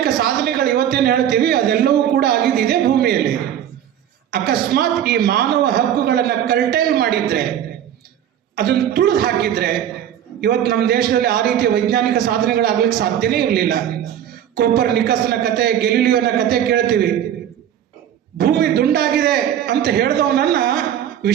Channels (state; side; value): quieter; left; 10.3 dB